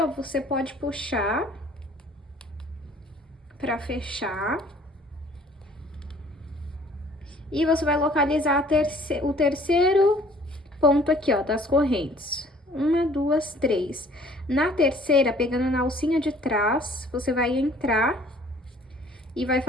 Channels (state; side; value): normal; both; correlation 0.55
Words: você pode puxar pra fechar. E você vai localizar o terceiro ponto aqui, ó, das correntes. 1, 2, 3. Na terceira, pegando na alcinha de trás, você vai entrar e vai